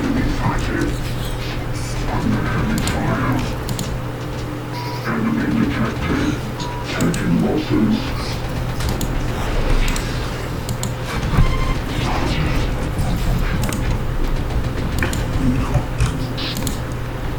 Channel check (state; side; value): identical; both; correlation 1.00